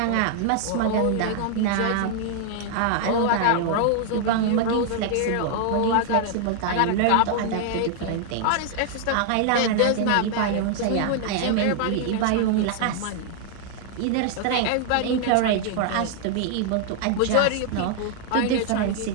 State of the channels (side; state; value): both; different; correlation 0.00